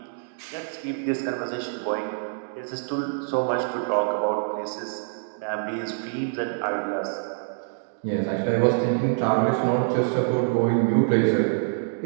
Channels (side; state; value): left; silent; digital silence